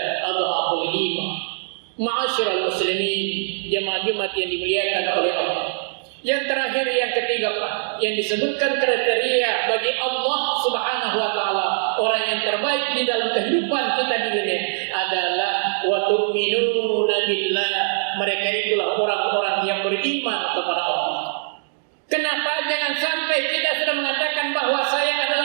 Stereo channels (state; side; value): silent; left; digital silence